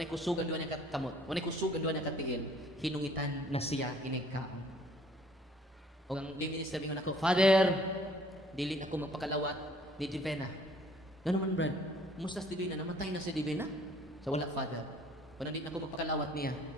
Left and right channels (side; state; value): both; normal; correlation 0.57